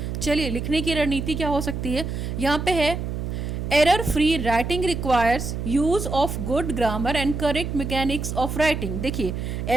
चलिए, लिखने की रणनीति क्या हो सकती है. यहाँ पे है error free writing requires use of good grammar and correct mechanics of writing. देखिए,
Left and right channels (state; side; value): noise; right; hum, 4 dB below the sound